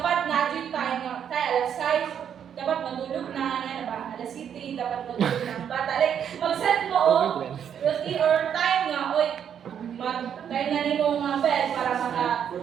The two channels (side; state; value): left; quieter; 8.6 dB